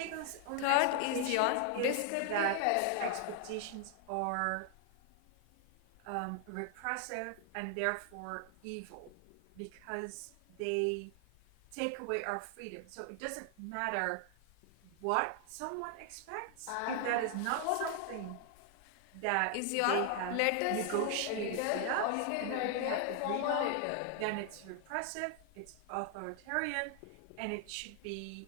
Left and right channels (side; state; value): both; different; correlation 0.00